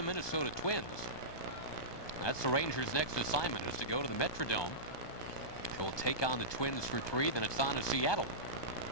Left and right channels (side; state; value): right; late; 1.2 ms